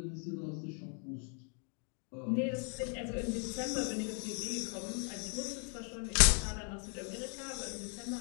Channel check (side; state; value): right; quieter; 39.5 dB